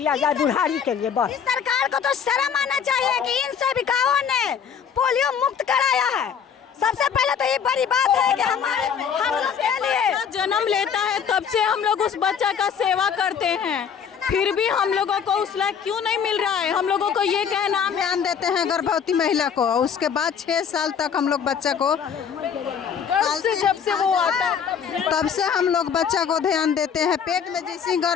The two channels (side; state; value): right; quieter; 7.4 dB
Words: जाए बुढ़ारी के लिए बस। सरकार को तो शर्म आना चाहिए कि इन सेविकाओं ने पोलियो मुक्त कराया है। सबसे पहले तो ये बड़ी बात है कि हम लोग के लिए जन्म लेता है तब से हम लोग उस बच्चा का सेवा करते हैं, फिर भी हम लोगों को उस लायक क्यों नहीं मिल रहा है? हम लोगों को ये कहना, ध्यान देते हैं गर्भवती महिला को, उसके बाद 6 साल तक हम लोग बच्चा को, जब से वो आता है तब से हम लोग बच्चा को ध्यान देते हैं। पेट में जैसे